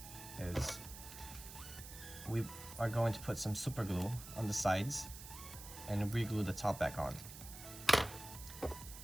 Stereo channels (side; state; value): right; noise; hiss, 13 dB below the sound